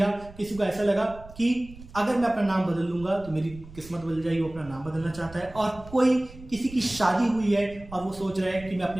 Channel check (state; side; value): noise; right; rumble, 19 dB below the sound